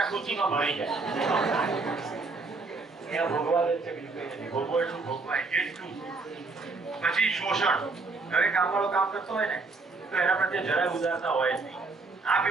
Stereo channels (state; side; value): quieter; left; 3.9 dB